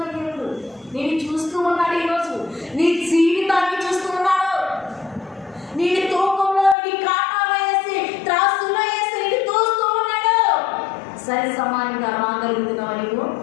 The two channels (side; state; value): right; drops out; at 6.8 s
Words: దేవుడు నేను చూస్తూ ఉన్నాడు. ఈరోజు నీ జీవితాన్ని చూస్తూ ఉన్నాడు. నేను తూకంలో నీ కాటాలో వేసి త్రాసులో వేసి నేను తోస్తూ ఉన్నాడు. సరి సమానంగా రాగలుగుతున్నావు. నీవు